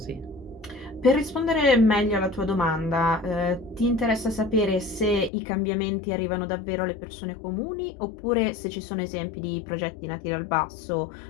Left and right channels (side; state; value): right; drops out; at 5.3 s